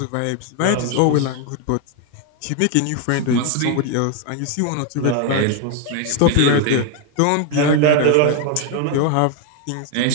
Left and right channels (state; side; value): different; both; correlation 0.01